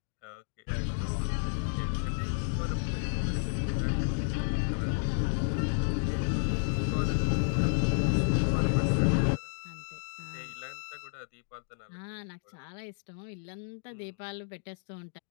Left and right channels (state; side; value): silent; right; digital silence